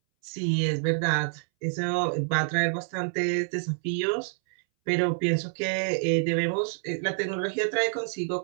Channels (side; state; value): left; silent; 60 dB below the other